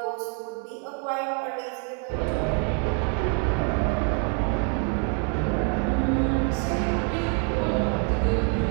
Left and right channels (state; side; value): quieter; left; 32.8 dB